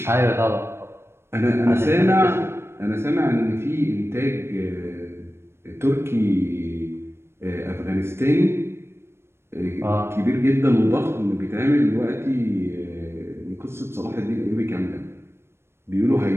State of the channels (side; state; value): left; late; 0.12 ms